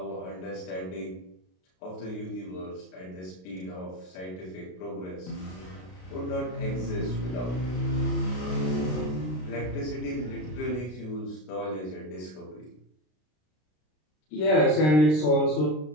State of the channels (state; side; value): late; right; 33 ms